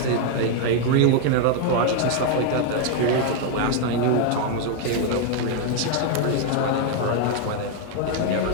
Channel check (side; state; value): both; different; correlation 0.01